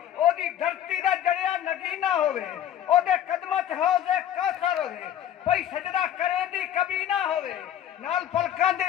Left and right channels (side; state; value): right; quieter; 10.8 dB